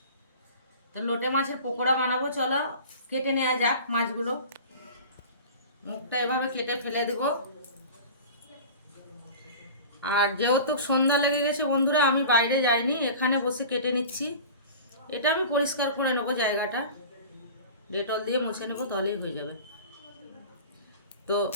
তো লোটে মাছের পকোড়া বানাবো, চলো কেটে নেওয়া যাক মাছগুলো। মুখটা এভাবে কেটে ফেলে দেব। আর যেহেতু সন্ধ্যা লেগে গেছে বন্ধুরা, আমি বাইরে যাইনি, এখানে বসে কেটে নিচ্ছি। এটা আমি পরিষ্কার করে নেবো, জায়গাটা ডেটল দিয়ে মুছে নেবো, তাহলেই হয়ে যাবে। তো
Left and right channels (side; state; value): both; inverted; correlation -0.37